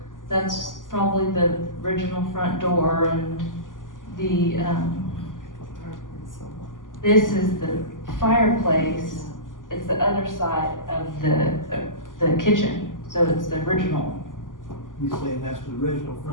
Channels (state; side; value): late; right; 0.88 ms